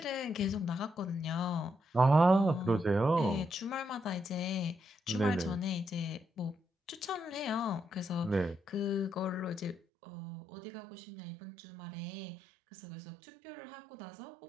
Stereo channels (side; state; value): left; drops out; at 9.8 s